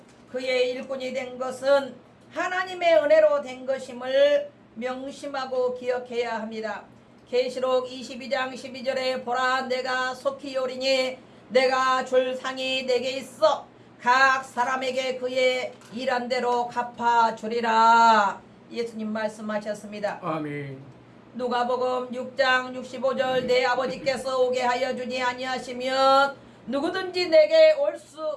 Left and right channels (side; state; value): both; identical; correlation 1.00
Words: 그의 일꾼이 된 것은 하나님의 은혜로 된 것임을 명심하고 기억해야 합니다. 계시록 22장 12절에 보라 내가 속히 오리니 내가 줄 상이 내게 있어 각 사람에게 그의 일한 대로 갚아주리라. 예수님 말씀하셨습니다. 아멘. 누가복음 6장 65절 내 아버지께서 오게 하여 주지 아니하시면 누구든지 내게 올